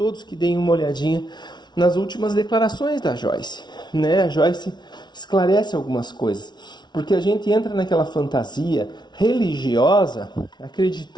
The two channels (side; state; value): right; late; 0.20 ms